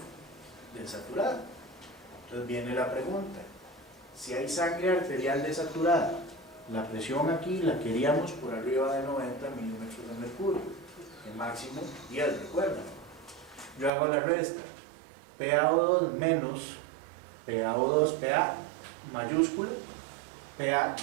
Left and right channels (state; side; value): drops out; left; at 13.9 s